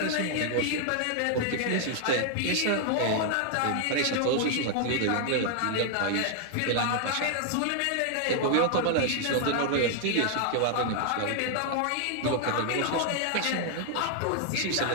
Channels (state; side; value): different; both; correlation 0.00